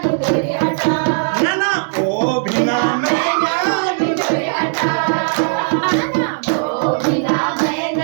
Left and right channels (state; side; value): silent; left; digital silence